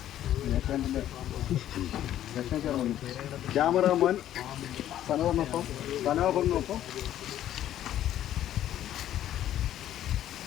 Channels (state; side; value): quieter; right; 12.0 dB